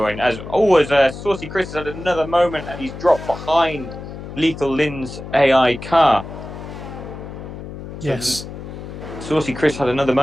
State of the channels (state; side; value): noise; left; hum, 11 dB below the sound